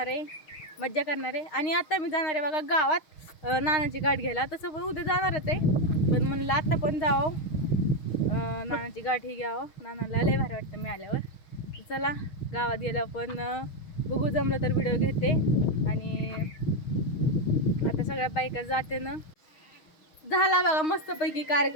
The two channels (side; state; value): right; late; 6.4 ms